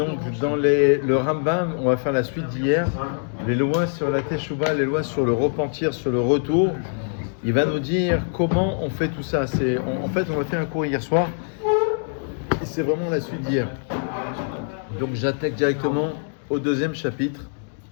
Rambam, on va faire la suite d'hier, les lois sur la Teshuvah, les lois sur le repentir, sur le retour. Il va nous dire comment on fait tout ça. En fait, on a fait un cours hier soir, et c'est vraiment la suite d'hier. Donc j'attaque directement au deuxième chapitre.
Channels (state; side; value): silent; right; digital silence